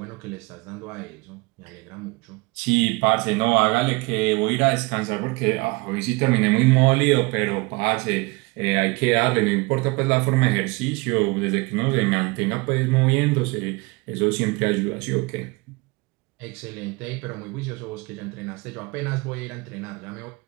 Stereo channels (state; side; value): quieter; left; 25.3 dB